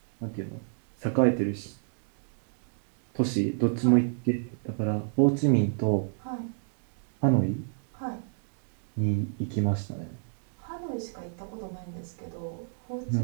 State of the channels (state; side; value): silent; left; digital silence